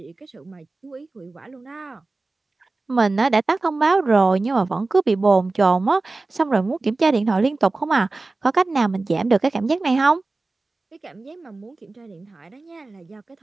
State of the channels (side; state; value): left; quieter; 3.4 dB